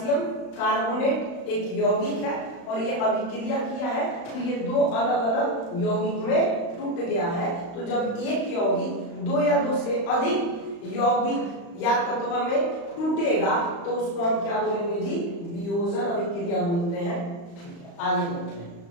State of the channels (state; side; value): late; right; 35 ms